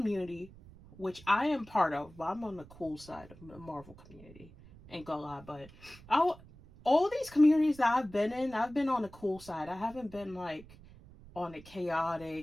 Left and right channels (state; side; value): noise; right; rumble, 21 dB below the sound